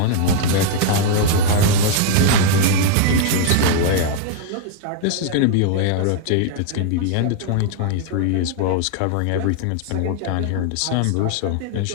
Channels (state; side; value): different; both; correlation 0.00